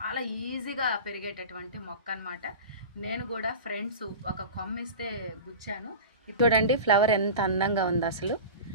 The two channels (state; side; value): inverted; both; correlation -0.31